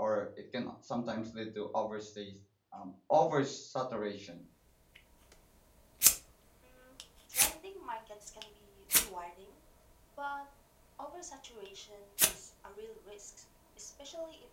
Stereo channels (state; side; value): identical; both; correlation 1.00